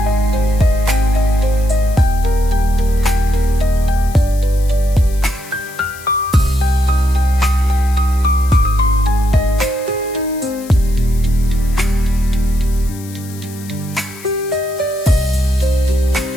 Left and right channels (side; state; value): left; noise; hiss, 19 dB below the sound